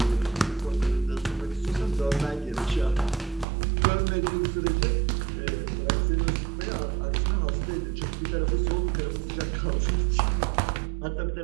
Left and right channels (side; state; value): left; drops out; at 3.5 s